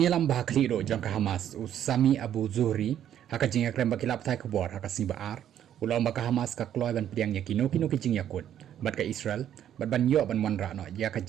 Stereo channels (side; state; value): left; quieter; 10.5 dB